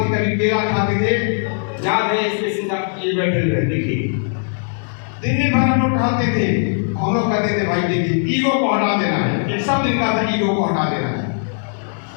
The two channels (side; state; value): right; silent; digital silence